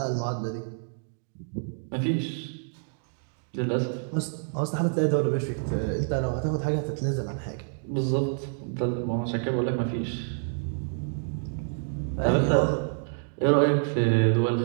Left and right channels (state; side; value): silent; left; digital silence